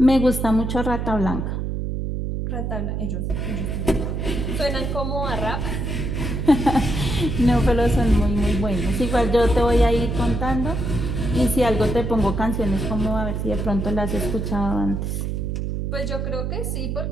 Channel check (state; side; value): noise; right; hum, 2 dB below the sound